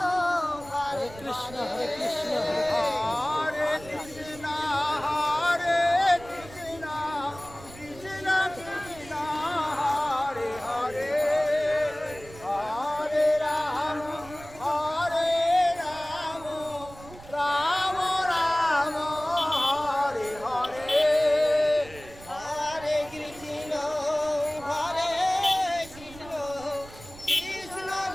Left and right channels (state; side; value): noise; right; rumble, 19 dB below the sound